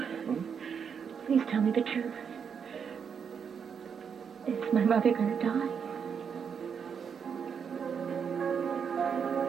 please tell me the truth. Is my mother going to die?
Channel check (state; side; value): quieter; left; 6.9 dB